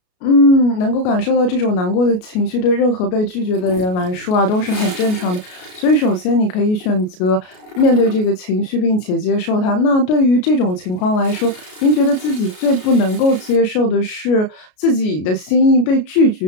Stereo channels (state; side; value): late; right; 33 ms